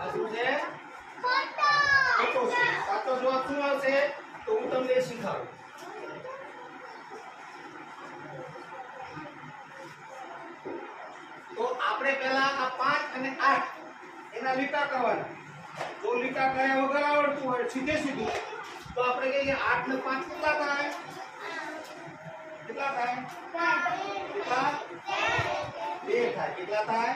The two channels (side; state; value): both; identical; correlation 1.00